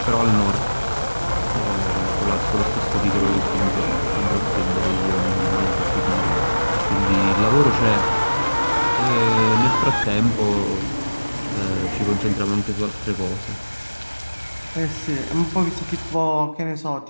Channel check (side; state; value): both; inverted; correlation -1.00